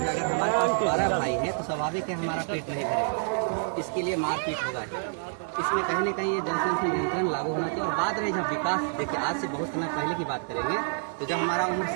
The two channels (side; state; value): left; silent; 59 dB below the other